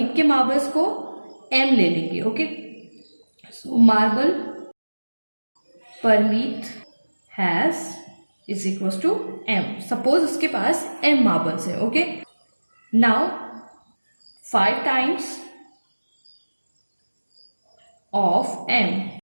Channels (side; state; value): both; inverted; correlation -1.00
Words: के मार्बल्स को m ले लेंगे. Okay, so marble Parmeet has is equal to m. Suppose उसके पास m मार्बल्स है. Okay, now 5 times of m,